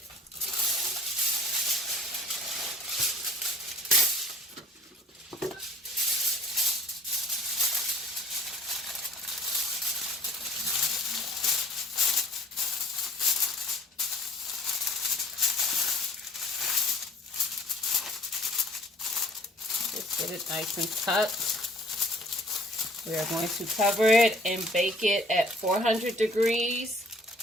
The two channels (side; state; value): both; normal; correlation 0.52